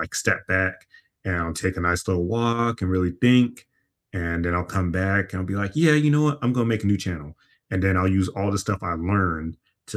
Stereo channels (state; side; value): identical; both; correlation 1.00